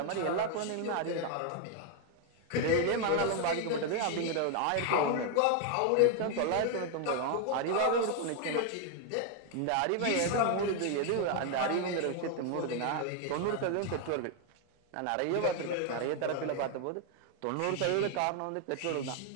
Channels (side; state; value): both; different; correlation 0.00